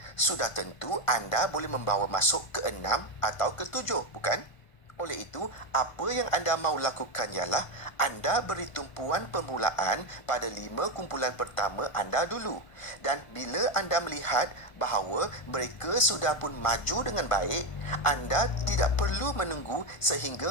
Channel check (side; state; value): right; late; 1.5 ms